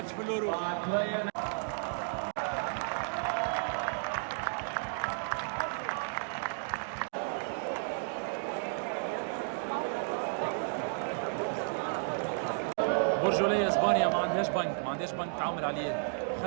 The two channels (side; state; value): left; silent; digital silence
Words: في اليورو. برجولية اسبانيا ما عندهاش بنك تعامل عليه.